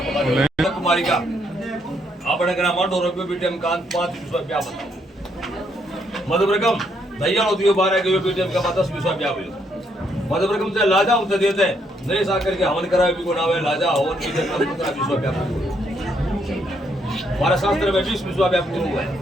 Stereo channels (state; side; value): normal; both; correlation 0.73